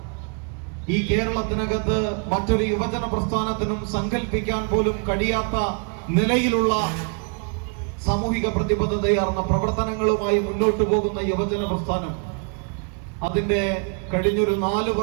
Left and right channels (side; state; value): left; quieter; 38.8 dB